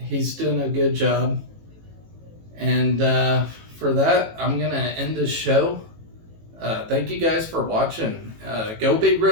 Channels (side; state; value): left; late; 18 ms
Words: doing a good job, and for that I'm gonna end this show. Thank you guys for watching. Go Big